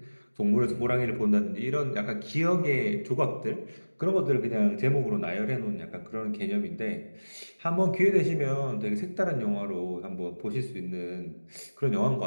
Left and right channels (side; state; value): both; inverted; correlation -1.00